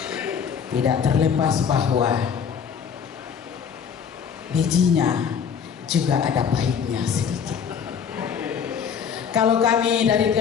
Tidak terlepas bahwa bijinya juga ada pahitnya sedikit. Kalau kami dari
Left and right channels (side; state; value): right; quieter; 7.1 dB